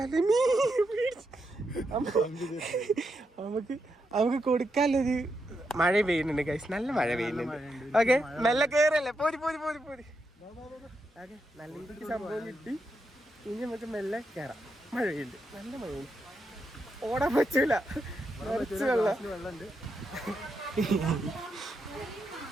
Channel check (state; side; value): normal; both; correlation 0.83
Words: നമുക്ക് കൊടുക്കാനൊരു മഴ പെയ്യുന്നുണ്ട് ഗൈസ്. നല്ല മഴ പെയ്യുന്നുണ്ട്. ഓക്കെ, മെല്ലെ കയറല്ലേ. പോരി ഓക്കെ, നല്ല രീതിക്ക് സംഭവം കിട്ടി. ഇനി നമുക്ക് മെല്ലെ കയറാം. മഴ പെയ്യുന്നുണ്ട്, നല്ല മഴയുണ്ട്. ഓടാൻ പറ്റൂല, നിറച്ച് വെള്ളമുണ്ട്.